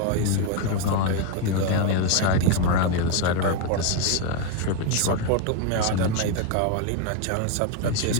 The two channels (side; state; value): both; different; correlation 0.01